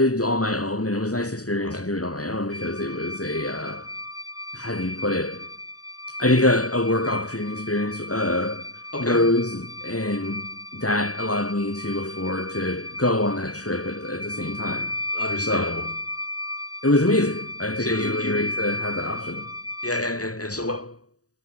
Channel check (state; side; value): late; right; 0.67 ms